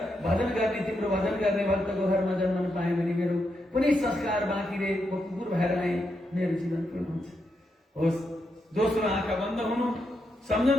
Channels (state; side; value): normal; both; correlation 0.83